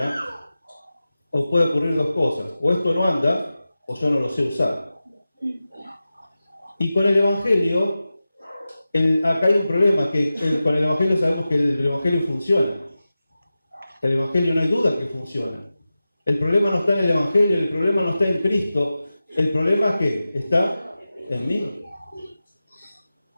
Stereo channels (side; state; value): both; inverted; correlation -0.94